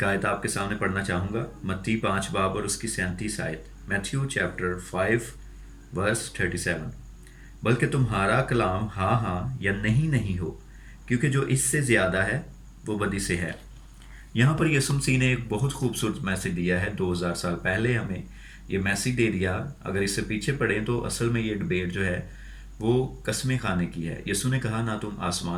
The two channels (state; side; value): identical; both; correlation 1.00